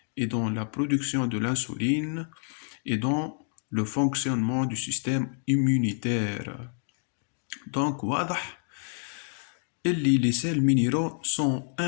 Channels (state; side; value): silent; right; 58 dB below the other